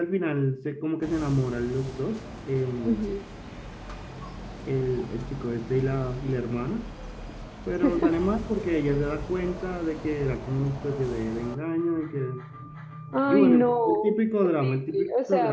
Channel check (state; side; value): identical; both; correlation 1.00